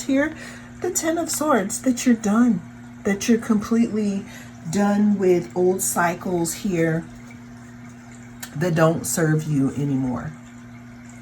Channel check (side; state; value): both; identical; correlation 1.00